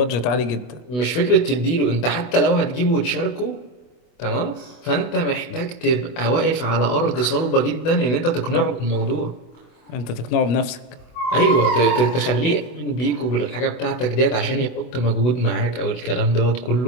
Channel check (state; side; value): late; right; 24 ms